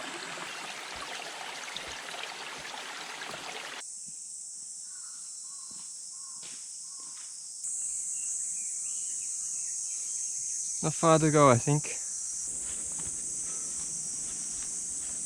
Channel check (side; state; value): both; identical; correlation 1.00